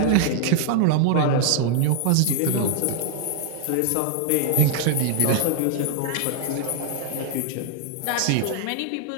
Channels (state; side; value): different; both; correlation 0.00